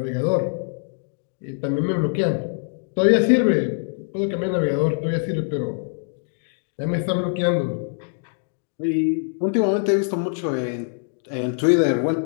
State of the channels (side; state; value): right; silent; digital silence